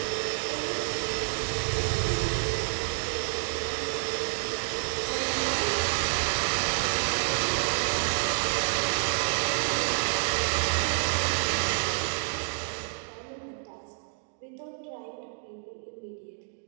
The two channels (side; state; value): left; silent; digital silence